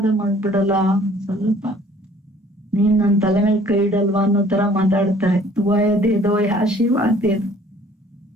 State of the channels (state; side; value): normal; both; correlation 0.55